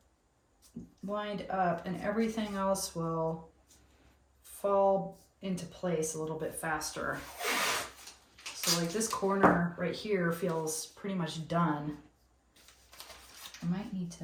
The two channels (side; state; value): both; identical; correlation 1.00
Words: lined up and everything else will fall into place a little bit faster. So like this corner right here feels pretty much done. I might need